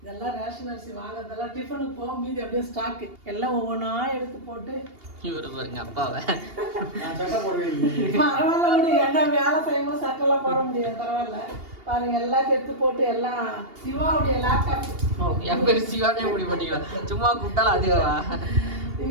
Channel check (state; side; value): late; left; 2.8 ms